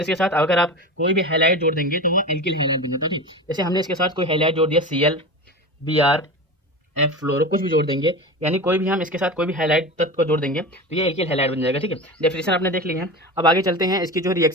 साथ अगर आप कोई भी हैलाइड जोड़ देंगे तो वो एल्किल हैलाइड बन जाता है। ठीक, जैसे हमने इसके साथ कोई हैलाइड जोड़ दिया, Cl, Br, F फ्लोरो, कुछ भी जोड़ देंगे, यानी कोई भी हम इसके साथ कोई भी हाइलाइट तत्व को जोड़ देंगे तो ये एल्किल हाइलाइट बन जाएगा। ठीक है, डेफिनेशन आपने देख ली है। अब आगे चलते हैं इसकी जो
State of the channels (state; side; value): normal; both; correlation 0.27